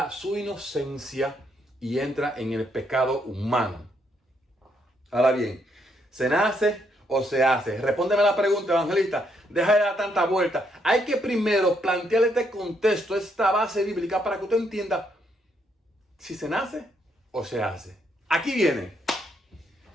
su inocencia y entra en el pecado humano. Ahora bien, ¿se nace o se hace? Respóndeme la pregunta, evangelista. Deja de dar tanta vuelta. Hay que primero plantearle este contexto, esta base bíblica, para que usted entienda si se nace o se hace. Aquí viene.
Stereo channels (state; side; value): normal; both; correlation 0.74